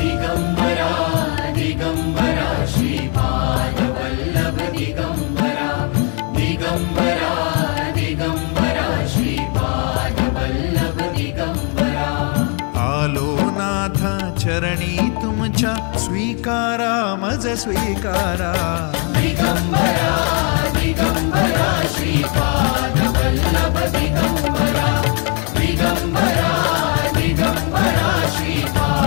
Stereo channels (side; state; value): right; quieter; 37.4 dB